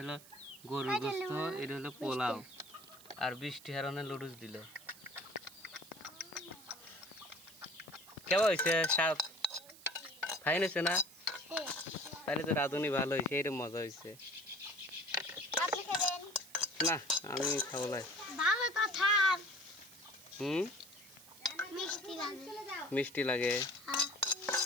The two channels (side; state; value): right; noise; hiss, 20 dB below the sound